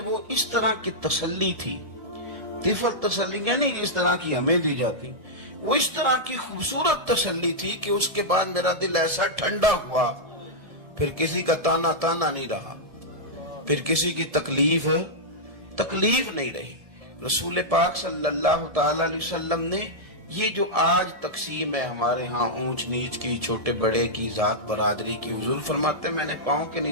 اس طرح کی تسلی تھی، طفل تسلی نہیں جس طرح کی ہمیں دی جاتی، وہ اس طرح کی خوبصورت تسلی تھی کہ اس کے بعد میرا دل ایسا ٹھنڈا ہوا، پھر کسی کا تانا نہیں رہا، پھر کسی کی تکلیف نہیں رہی۔ رسول پاک صلی اللہ تعالی علیہ وسلم نے یہ جو آج تقسیم ہے ہمارے ہاں اونچ نیچ کی، چھوٹے بڑے کی، ذات برادری کی، حضور فرماتے ہیں میں نے پاؤں کے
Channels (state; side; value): late; left; 1.7 ms